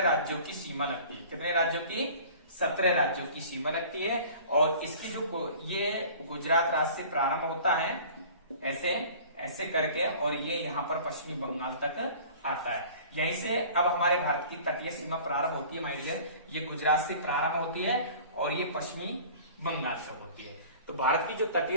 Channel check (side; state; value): both; inverted; correlation -0.45